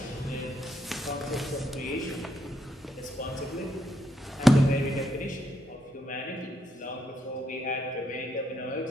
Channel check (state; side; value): normal; both; correlation 0.77